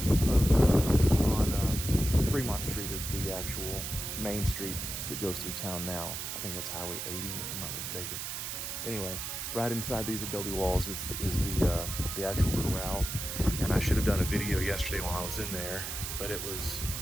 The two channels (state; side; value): noise; right; hiss, 5 dB below the sound